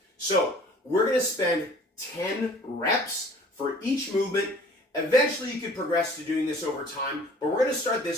So we're going to spend 10 reps for each movement. Eventually you could progress to doing this over time, but we're going to start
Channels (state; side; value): normal; both; correlation 0.50